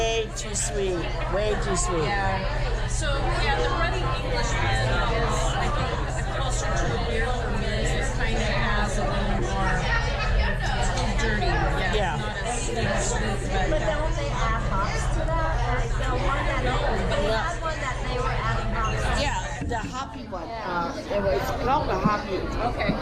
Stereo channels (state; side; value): identical; both; correlation 1.00